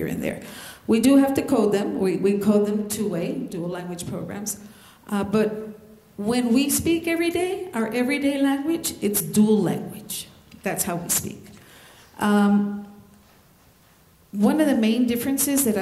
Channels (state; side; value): identical; both; correlation 1.00